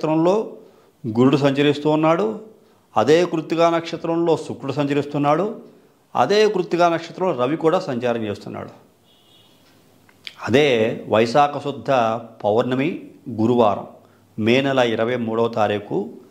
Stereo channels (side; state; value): both; identical; correlation 1.00